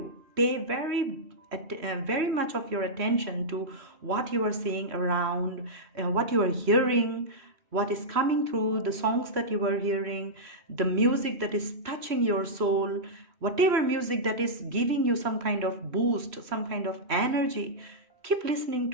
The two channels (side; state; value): left; late; 3.1 ms